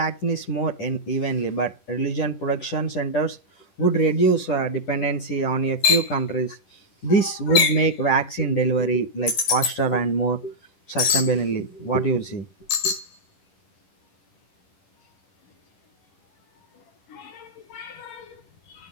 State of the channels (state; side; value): late; right; 10 ms